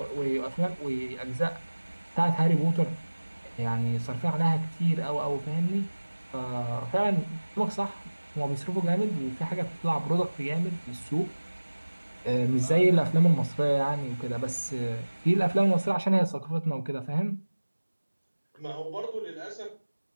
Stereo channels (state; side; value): inverted; both; correlation -1.00